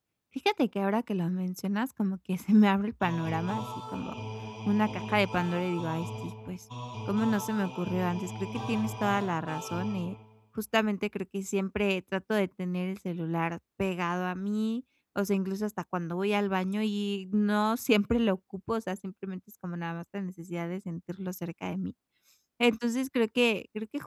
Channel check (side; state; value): both; identical; correlation 1.00